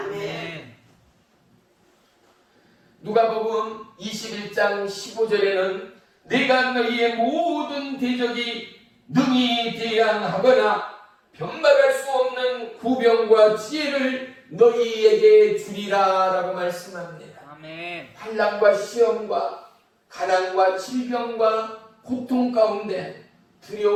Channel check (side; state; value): both; identical; correlation 1.00